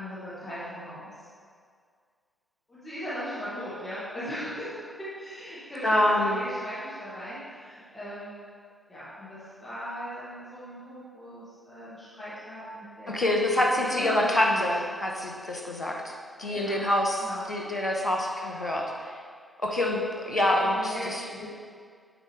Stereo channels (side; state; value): both; normal; correlation 0.72